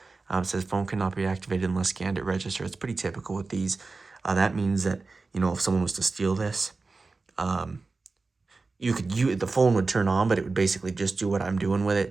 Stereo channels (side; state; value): left; quieter; 3.8 dB